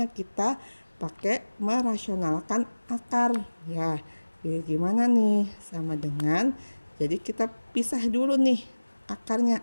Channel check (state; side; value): inverted; both; correlation -1.00